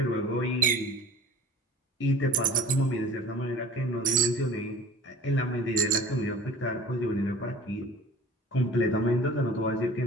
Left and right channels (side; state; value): both; normal; correlation 0.43